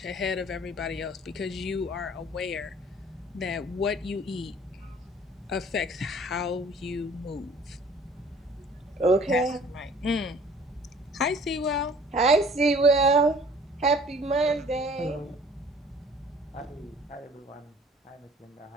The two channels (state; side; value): normal; both; correlation 0.52